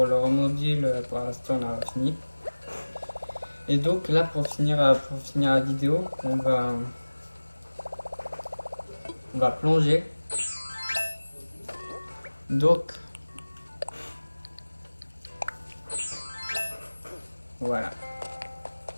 le remodule, pour l'instant on a fini. Et donc là pour finir la vidéo, on va plonger. Donc voilà.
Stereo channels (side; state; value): both; inverted; correlation -1.00